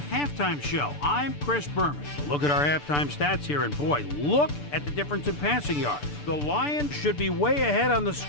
Halftime Show. I'm Chris Berman. Look at our halftime stats here, and boy, look at the difference in passing yards. The Lions should be way ahead on the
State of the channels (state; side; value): late; right; 6.8 ms